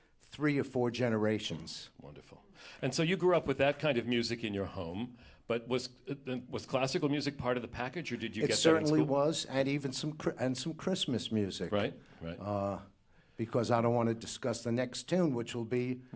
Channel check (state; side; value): identical; both; correlation 1.00